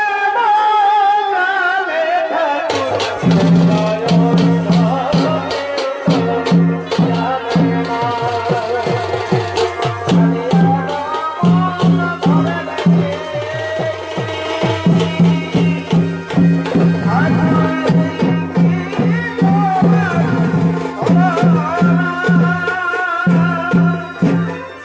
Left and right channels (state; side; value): identical; both; correlation 1.00